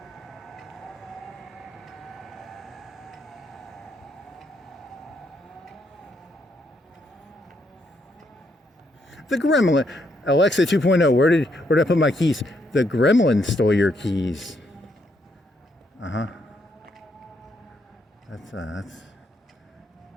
The gremlin. Alexa 2.0, where did I put my keys? The gremlin stole your keys. That's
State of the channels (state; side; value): normal; both; correlation 0.75